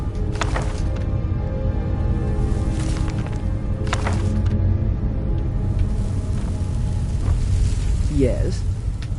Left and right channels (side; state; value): both; identical; correlation 1.00